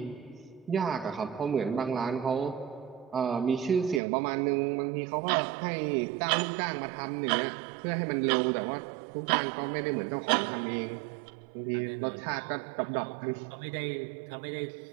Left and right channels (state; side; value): drops out; left; at 4.0 s